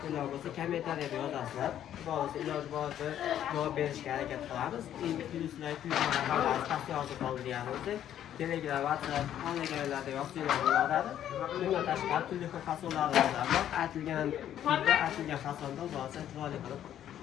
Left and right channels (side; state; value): right; quieter; 10.8 dB